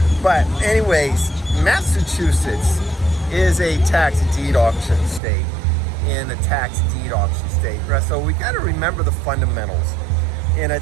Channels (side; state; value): left; drops out; at 5.2 s